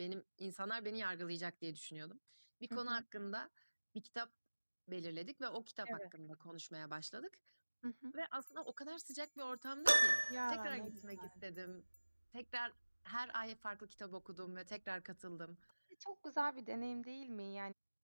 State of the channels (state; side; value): inverted; both; correlation -1.00